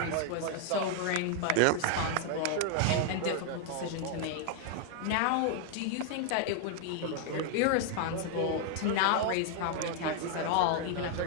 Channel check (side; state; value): both; different; correlation 0.00